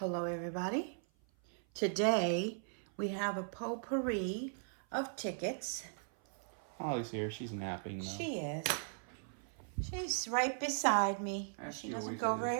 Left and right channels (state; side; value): silent; left; 52 dB below the other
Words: everybody. Today we have a potpourri of tickets. Holly's here. She's napping though. She is. She's right beside me. As She she doesn't always go is.